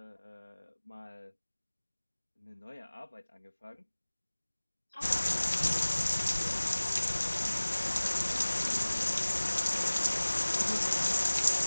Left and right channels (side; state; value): both; inverted; correlation -1.00